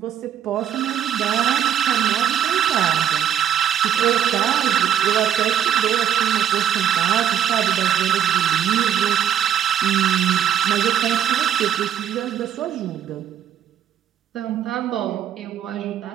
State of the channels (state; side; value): quieter; left; 9.7 dB